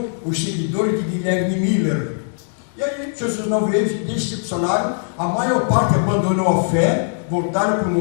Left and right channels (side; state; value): right; silent; digital silence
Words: os seguidores de Guilherme Miller. E aí Jesus não veio, decepcionaram, a maior parte abandonou a fé, voltaram para o